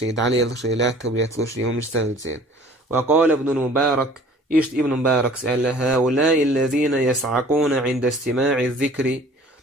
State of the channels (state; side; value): normal; both; correlation 0.50